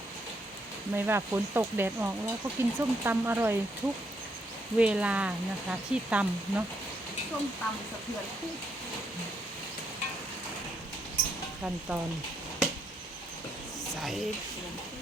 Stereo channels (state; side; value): normal; both; correlation 0.75